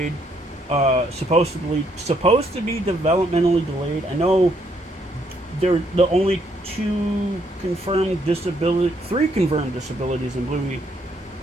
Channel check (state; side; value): normal; both; correlation 0.72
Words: Supposed to be developmentally delayed. I know they're the only three confirmed disabilities in Bluey.